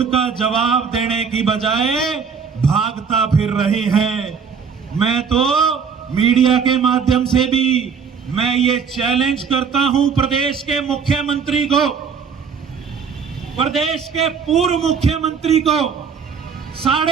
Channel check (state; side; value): quieter; left; 6.2 dB